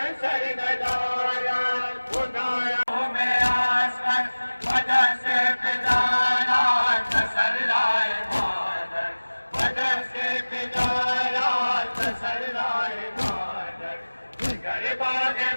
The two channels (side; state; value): both; inverted; correlation -1.00